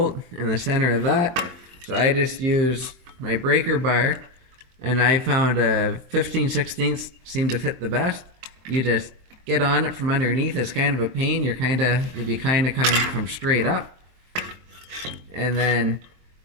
in the center of that. So I just use my breaker bar, and I found a 15/16 seemed to fit the best. You just get on it from underneath. It's kind of a pain. You'll be kind of coming from straight up, and then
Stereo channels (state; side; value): late; left; 23 ms